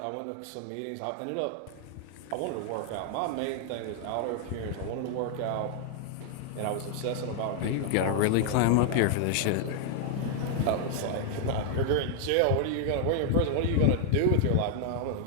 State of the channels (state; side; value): different; both; correlation 0.00